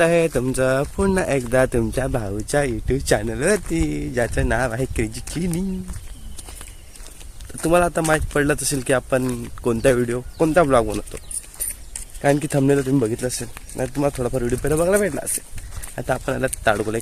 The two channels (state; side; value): identical; both; correlation 1.00